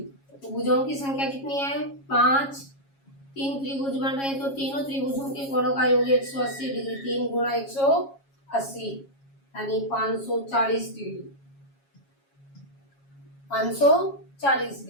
तो भुजाओं की संख्या कितनी है? 5। 3 त्रिभुज बन रहे हैं, तो तीनों त्रिभुजों के कोणों का योग 180 डिग्री। 3 गुणा 180 यानी 540 डिग्री। 540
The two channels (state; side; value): late; right; 7.3 ms